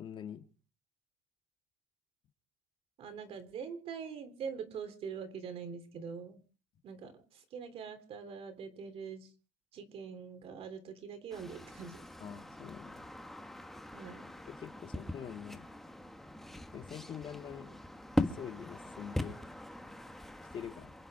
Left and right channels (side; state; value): both; normal; correlation 0.76